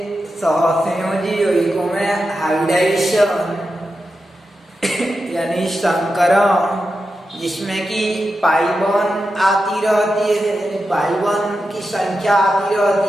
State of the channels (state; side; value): normal; both; correlation 0.89